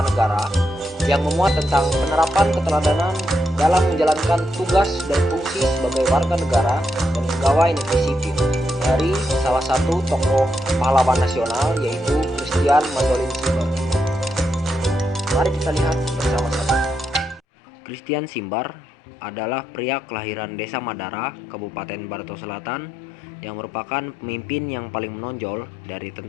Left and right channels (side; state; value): right; drops out; at 17.4 s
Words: negara yang memuat tentang penerapan keteladanan dalam menjalankan tugas dan fungsi sebagai warga negara dan pegawai negeri sipil dari salah satu tokoh pahlawan nasional, yaitu Christian Mandolin Simbar. Mari kita lihat bersama-sama. Christian Simbar adalah pria kelahiran Desa Madara, Kabupaten Barito Selatan, yang merupakan pemimpin yang paling menonjol dari